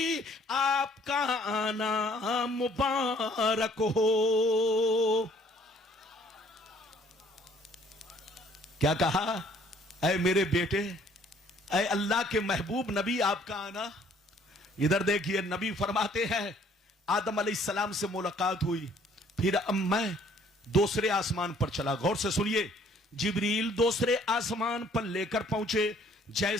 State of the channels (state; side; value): normal; both; correlation 0.60